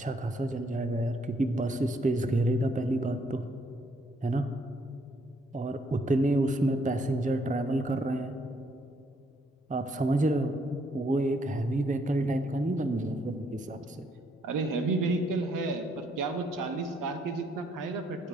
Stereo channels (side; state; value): both; normal; correlation 0.70